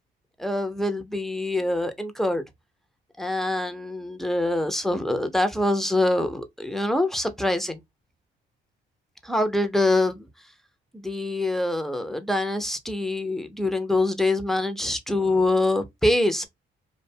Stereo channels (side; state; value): both; normal; correlation 0.88